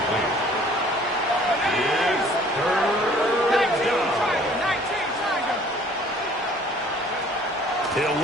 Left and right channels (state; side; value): normal; both; correlation 0.54